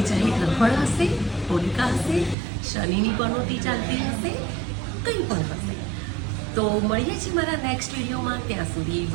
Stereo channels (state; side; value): drops out; left; at 2.4 s